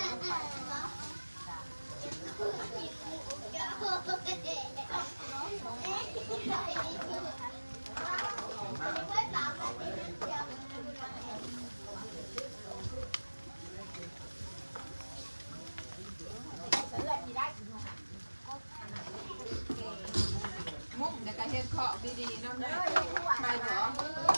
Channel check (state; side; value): inverted; both; correlation -1.00